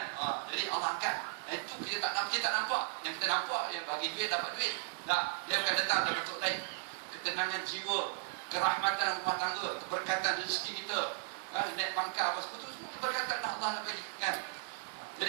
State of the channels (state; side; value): silent; left; 54 dB below the other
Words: Jadi Allah angkat. Itu kita tak nampak. Yang kita nampak, dia bagi duit, dapat duit. Tak, dia akan datang dalam bentuk lain. Ketenangan jiwa, kerahmatan rumah tangga, keberkatan rezeki kita, naik pangkat apa semua tu, semua keberkatan Allah nak bagi kan.